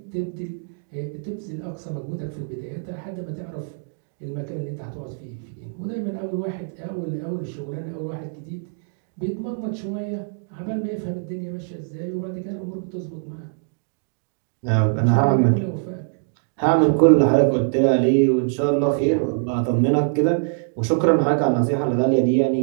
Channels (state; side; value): silent; left; digital silence